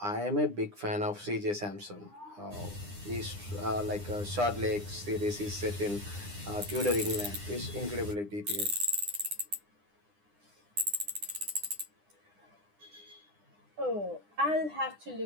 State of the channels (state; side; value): late; left; 9.8 ms